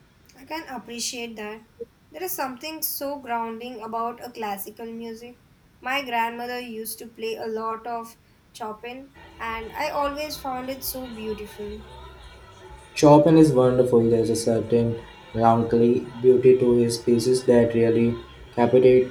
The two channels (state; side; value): identical; both; correlation 1.00